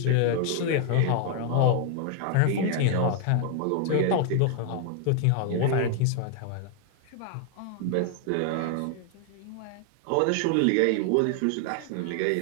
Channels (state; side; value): different; both; correlation 0.00